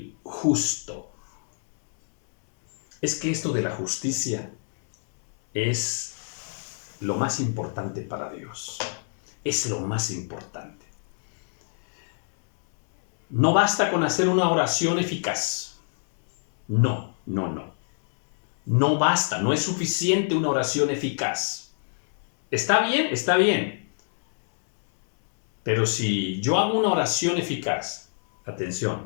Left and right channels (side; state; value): right; silent; 61 dB below the other